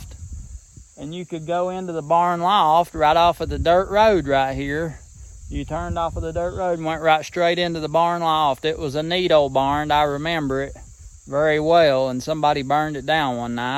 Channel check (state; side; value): identical; both; correlation 1.00